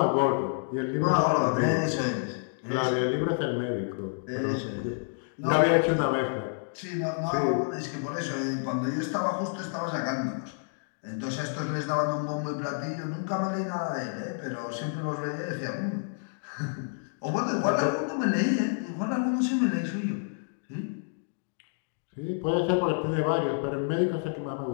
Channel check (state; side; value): silent; right; digital silence